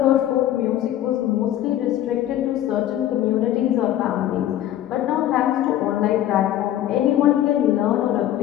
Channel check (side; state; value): right; quieter; 12.5 dB